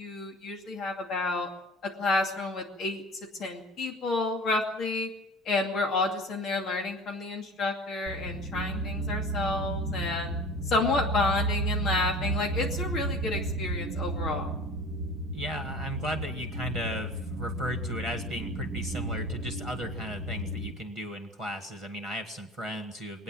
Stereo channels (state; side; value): normal; both; correlation 0.39